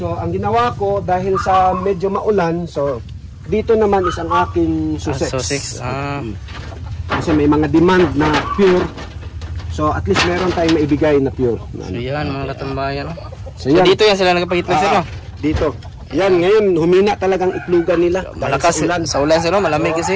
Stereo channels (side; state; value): both; identical; correlation 1.00